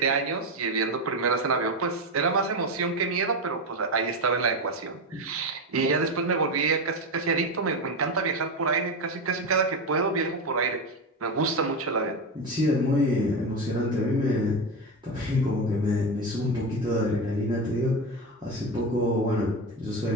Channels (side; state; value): both; normal; correlation 0.16